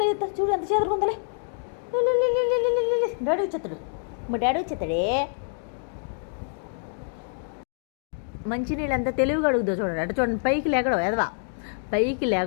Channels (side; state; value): right; silent; 61 dB below the other